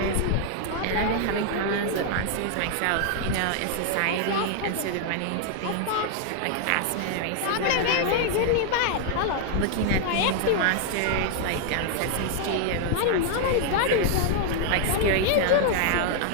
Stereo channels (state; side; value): different; both; correlation 0.00